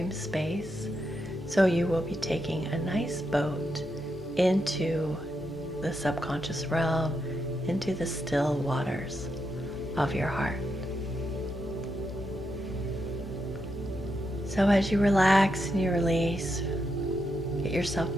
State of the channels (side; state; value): both; normal; correlation 0.83